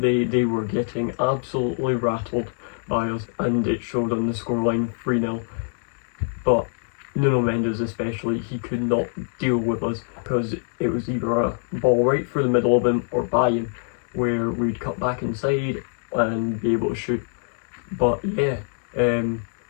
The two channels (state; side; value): silent; right; digital silence